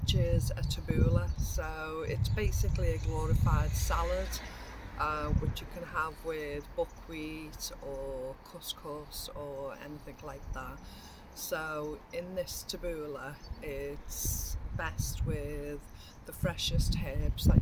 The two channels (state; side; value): identical; both; correlation 1.00